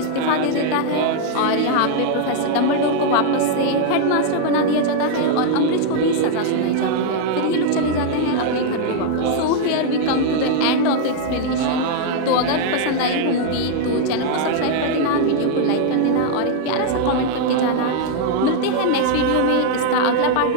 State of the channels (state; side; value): different; both; correlation 0.00